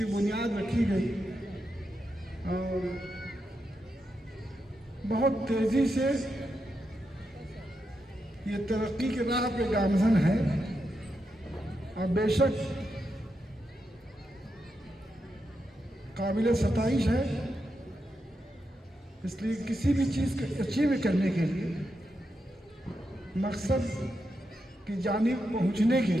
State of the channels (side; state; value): both; normal; correlation 0.85